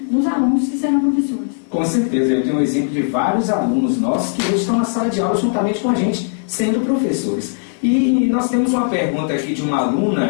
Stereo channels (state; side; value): silent; right; 67 dB below the other